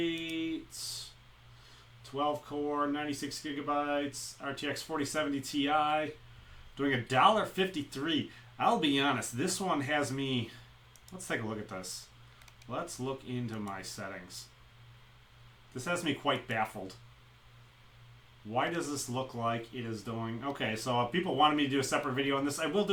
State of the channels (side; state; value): both; identical; correlation 1.00